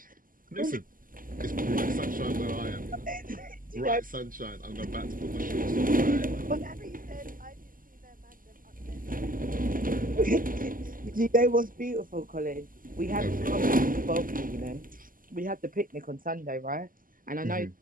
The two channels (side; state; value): left; late; 0.41 ms